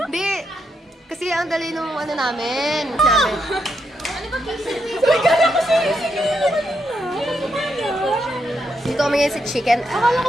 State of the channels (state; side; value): normal; both; correlation 0.80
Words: Hindi. Kasi ang dali nung ano namin. Dito kami ngayon sa chicken. Akala